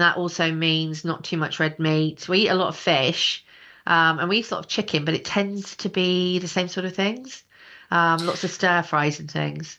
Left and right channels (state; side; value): identical; both; correlation 1.00